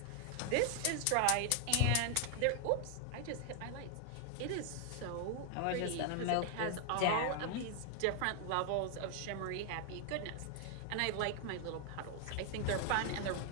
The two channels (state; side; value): different; both; correlation 0.00